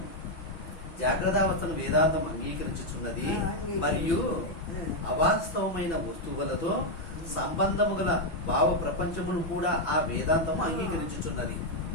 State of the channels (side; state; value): right; late; 6.0 ms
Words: జాగ్రత్తావస్థను వేదాంతం అంగీకరించుచున్నది మరియు అవాస్తవమైన వస్తువులతో సంబంధము గల భావ ప్రపంచమును కూడా ఆ వేదాంతము అంగీకరించుచున్నది.